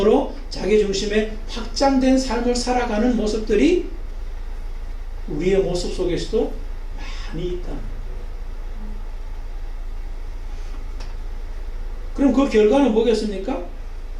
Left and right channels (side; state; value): both; identical; correlation 1.00